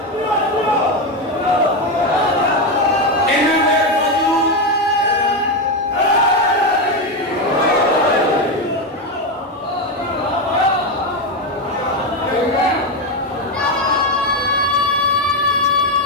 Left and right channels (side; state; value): both; normal; correlation 0.10